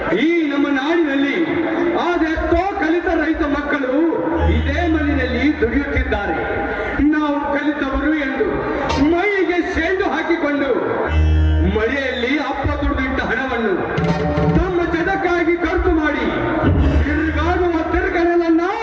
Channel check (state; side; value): identical; both; correlation 1.00